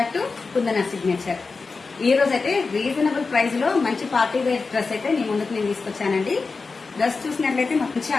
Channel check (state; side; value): quieter; right; 4.3 dB